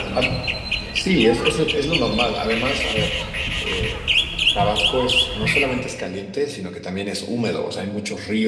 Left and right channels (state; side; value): identical; both; correlation 1.00